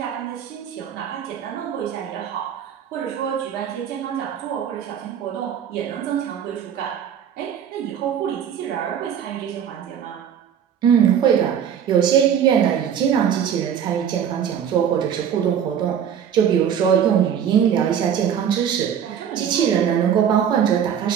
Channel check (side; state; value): left; quieter; 8.6 dB